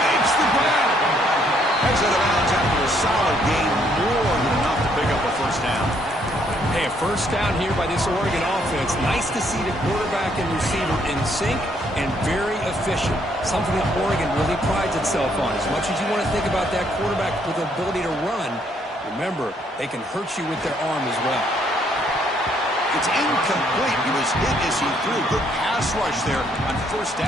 the grab. Heads out of bounds after a solid gain. More than enough to pick up a first down. Hey, a first down here by this Oregon offense. Nice to see the quarterback and receiver in sync and very efficient. Something that Oregon really prides itself on. As much as you want to think about that quarterback with the ability to run, remember, they can hurt you with their arm as well. It's incomplete. He was hit as he threw. Good pass rush there on first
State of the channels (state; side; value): normal; both; correlation 0.69